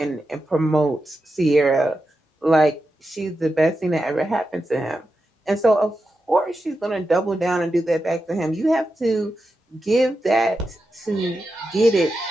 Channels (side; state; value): both; normal; correlation 0.89